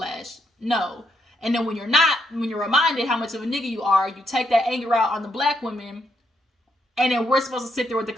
no. And then when you're reminded how much of a nigga you are, you take that anger out on the black women, and then we're supposed to sit there with the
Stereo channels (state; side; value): normal; both; correlation 0.76